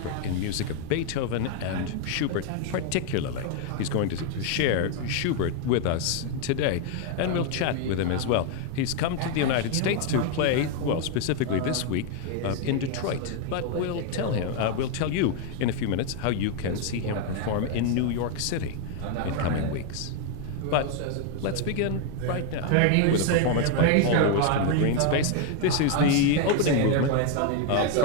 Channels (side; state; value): both; different; correlation 0.01